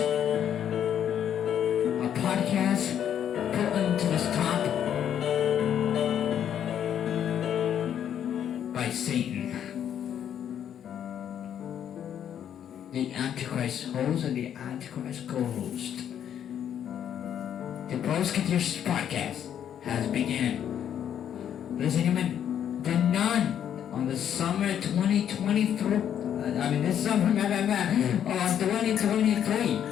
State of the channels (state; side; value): quieter; right; 9.5 dB